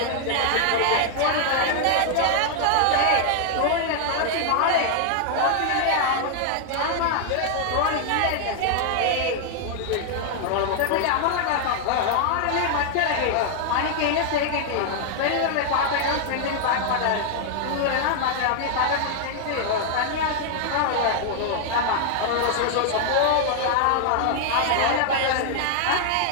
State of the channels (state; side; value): different; both; correlation 0.00